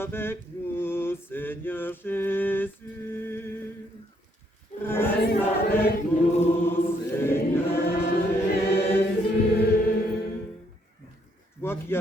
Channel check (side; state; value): both; normal; correlation 0.71